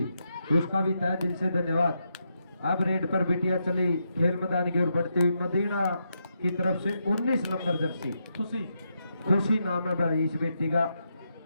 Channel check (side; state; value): both; inverted; correlation -0.82